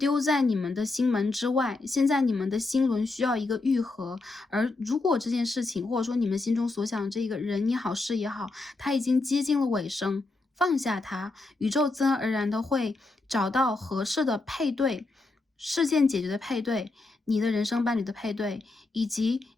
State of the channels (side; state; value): right; quieter; 3.3 dB